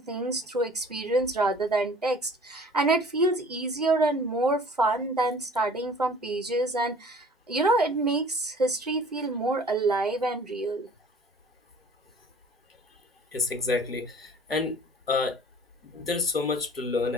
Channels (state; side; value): normal; both; correlation 0.49